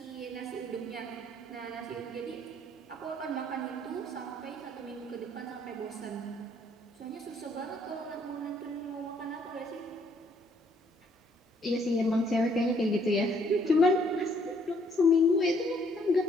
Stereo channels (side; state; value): both; normal; correlation 0.66